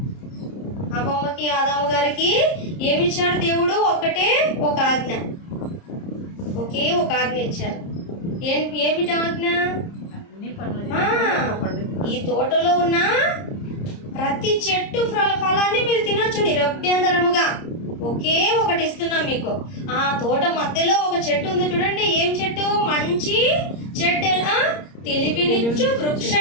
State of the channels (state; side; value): late; right; 30 ms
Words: అవ్వమ్మకి ఆదాము గారికి ఏమిచ్చాడు దేవుడు? ఒకటే ఒక ఆజ్ఞ. ఒకే ఒక ఆజ్ఞ ఇచ్చారు. ఏమిటి ఆజ్ఞ? ఈ తోటలో ఉన్న ప్రతి చెట్టు ఫలాన్ని మీరు తినొచ్చు నిరభ్యంతరముగా. ఒకే ఒకటి ఇస్తున్నాం మీకు. ఆ తోట మధ్యలో ఒక చెట్టు ఉంది చూడండి. ఏం చెట్టు? మంచి చెట్టు, తెలివినిచ్చు వృక్ష